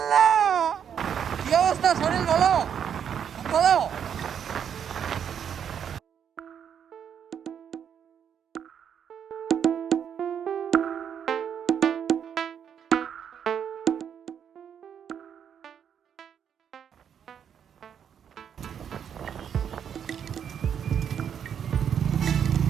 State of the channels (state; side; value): quieter; left; 8.3 dB